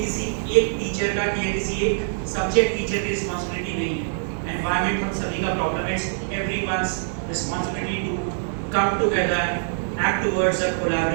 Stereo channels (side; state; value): left; silent; digital silence